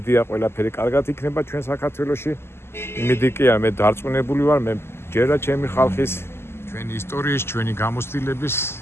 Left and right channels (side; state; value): right; late; 0.12 ms